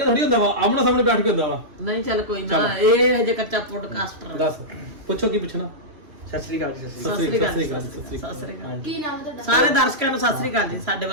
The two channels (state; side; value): late; left; 2.8 ms